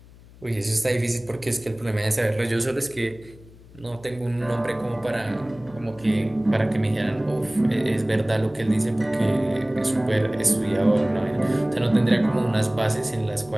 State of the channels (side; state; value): left; noise; hum, 22 dB below the sound